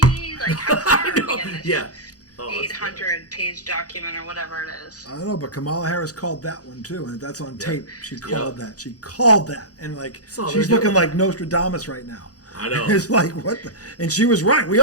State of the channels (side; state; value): right; late; 0.67 ms